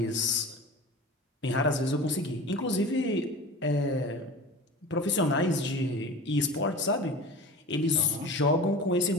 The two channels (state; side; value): normal; both; correlation 0.35